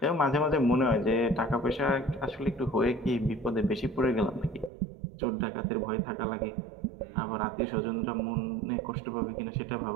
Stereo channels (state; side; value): drops out; left; at 4.7 s